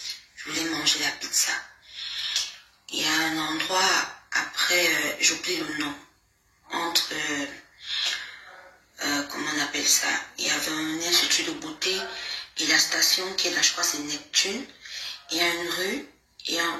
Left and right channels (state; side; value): identical; both; correlation 1.00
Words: Je voulais manger la pizza. Il y a un endroit, après, j'oublie le nom, entre, comment on appelle ça? Il y avait un institut de beauté et la station qui est là, je crois c'est Neptune. Il y a une rue et